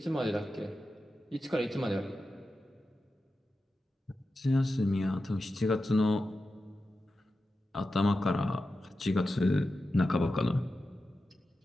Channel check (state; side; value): normal; both; correlation 0.92